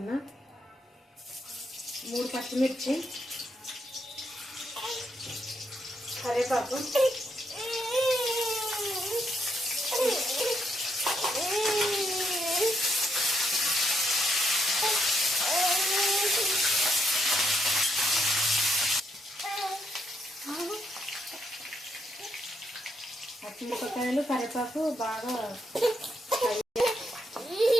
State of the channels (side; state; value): both; normal; correlation 0.76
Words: 3 పచ్చిమిర్చి, కరివేపాకు, పచ్చిమిరపకాయలు, కరివేపాకు బాగా